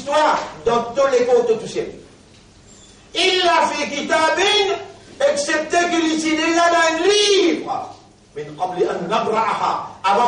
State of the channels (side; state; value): both; identical; correlation 1.00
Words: toi, dans tous les côtés touchés. Il l'a fait kitabin, excepté qu'il est déjà dans un livre. Mais